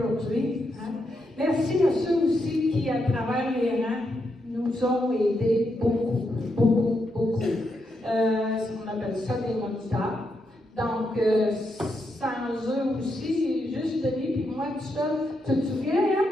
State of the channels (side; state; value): both; normal; correlation 0.82